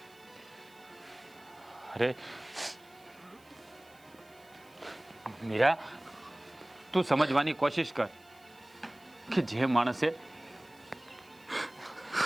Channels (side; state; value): right; noise; hiss, 28 dB below the sound